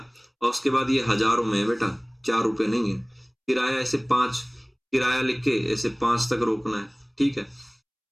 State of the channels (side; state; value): both; identical; correlation 1.00